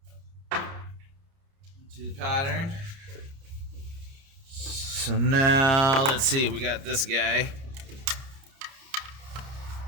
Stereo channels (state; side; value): late; left; 30 ms